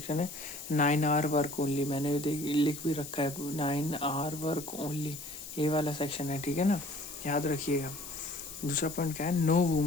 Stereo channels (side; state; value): left; noise; hiss, 11 dB below the sound